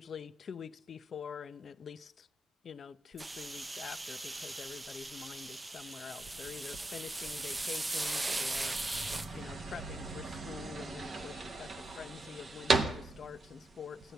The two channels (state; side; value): normal; both; correlation 0.84